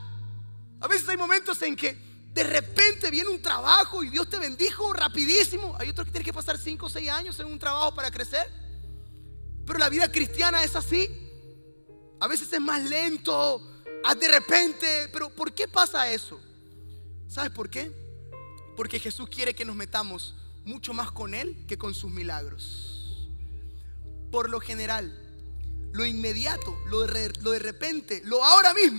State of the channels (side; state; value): both; inverted; correlation -1.00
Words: A veces hay momentos en que de repente viene un trabajo y Dios te bendijo rapidísimo. Hay otros que tienen que pasar 5 o 6 años en un trabajo para crecer. Pero la vida cristiana es así. A veces es más lento, de repente. Pero ¿por qué pasa eso? ¿Sabes por qué? Porque Jesús quiere que nos metamos mucho más con Él que con sus milagros. Por lo general, lo inmediato, lo de repente, lo ahora